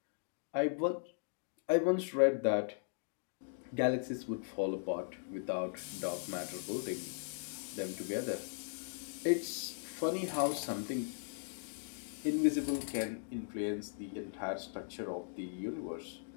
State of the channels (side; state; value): right; silent; digital silence